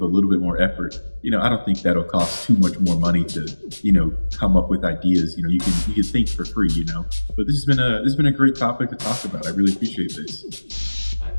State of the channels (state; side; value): inverted; both; correlation -1.00